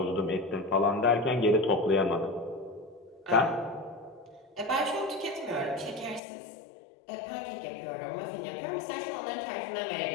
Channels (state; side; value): drops out; right; at 6.2 s